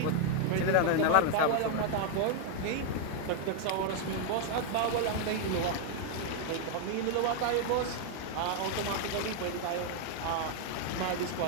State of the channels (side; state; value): both; different; correlation 0.00